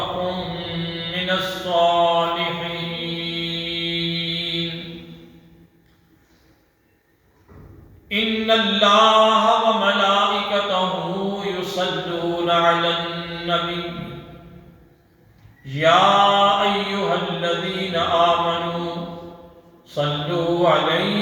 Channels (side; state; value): both; identical; correlation 1.00